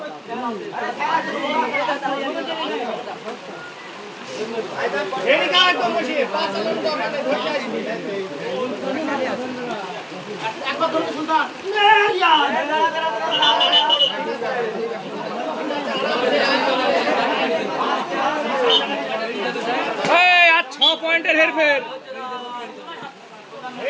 আর 6 পয়েন্টের হেরফের।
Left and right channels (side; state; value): both; identical; correlation 1.00